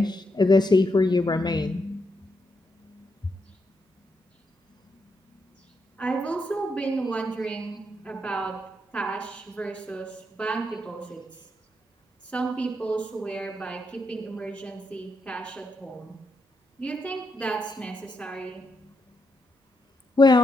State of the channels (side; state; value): both; normal; correlation 0.81